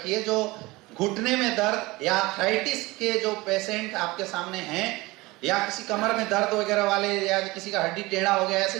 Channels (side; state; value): left; quieter; 21.6 dB